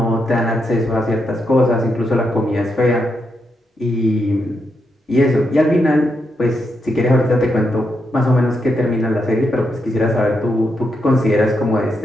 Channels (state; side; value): normal; both; correlation 0.82